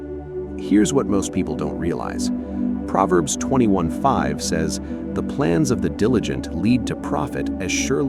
Here's what most people don't realize. Proverbs 21:5 says, "The plans of the diligent lead to profit as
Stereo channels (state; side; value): identical; both; correlation 1.00